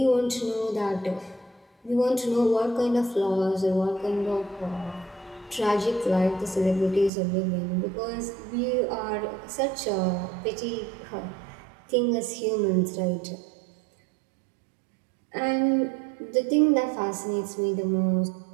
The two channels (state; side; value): drops out; left; at 7.1 s